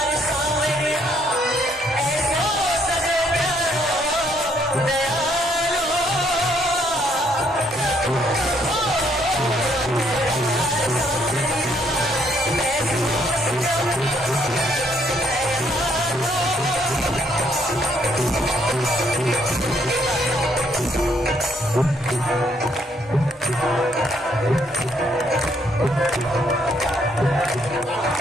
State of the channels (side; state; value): both; normal; correlation 0.69